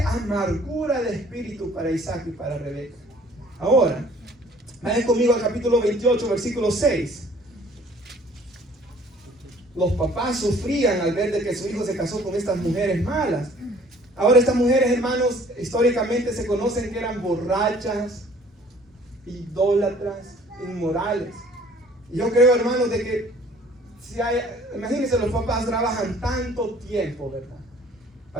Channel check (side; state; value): both; normal; correlation 0.54